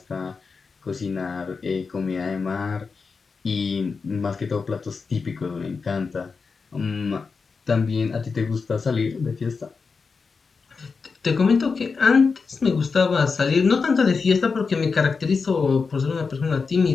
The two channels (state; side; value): quieter; right; 4.9 dB